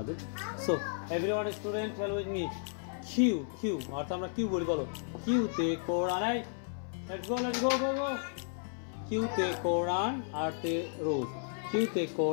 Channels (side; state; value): right; silent; 55 dB below the other